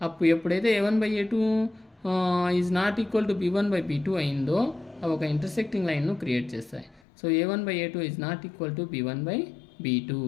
ఎప్పుడైతే a1/a2 is not equal to b1/b2 అయిందో అవి ఒక ఇంటర్సెక్టింగ్ లైన్ను క్రియేట్ చేస్తాయి. So a1/a2 is not equal to b1/b2.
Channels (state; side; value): drops out; right; at 7.0 s